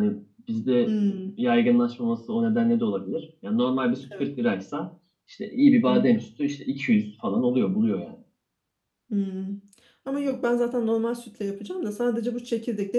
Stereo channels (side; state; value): both; identical; correlation 1.00